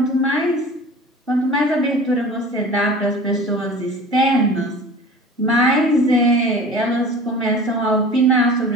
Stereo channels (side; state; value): both; normal; correlation 0.40